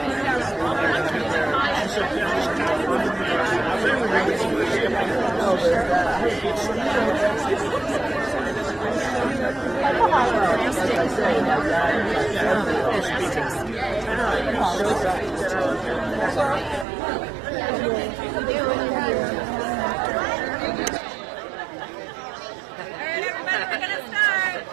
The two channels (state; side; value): drops out; left; at 16.9 s